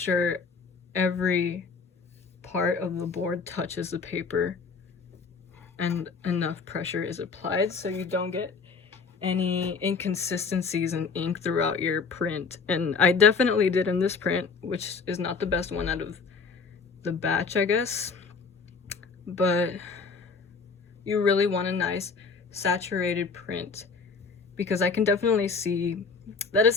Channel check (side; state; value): right; quieter; 4.9 dB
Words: every part of the board touches the paper and enough pressure is applied so you don't get any inconsistencies in ink throughout your print. And I definitely did in this print, which is not the best one out of the batch, I guess, but you really want a nice saturated print, because I can definitely see that